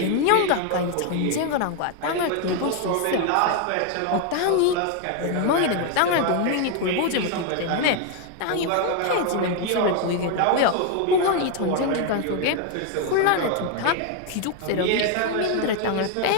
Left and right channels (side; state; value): both; different; correlation 0.01